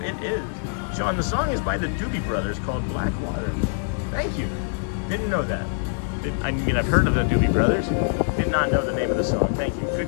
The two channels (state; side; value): silent; right; 62 dB below the other